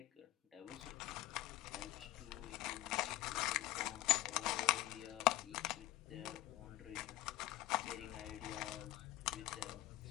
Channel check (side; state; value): right; quieter; 16.4 dB